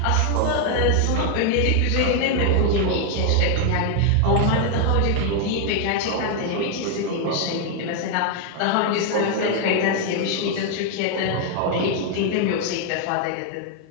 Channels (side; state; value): both; different; correlation 0.00